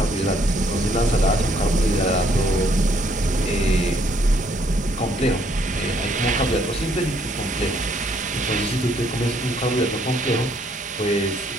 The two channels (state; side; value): normal; both; correlation 0.68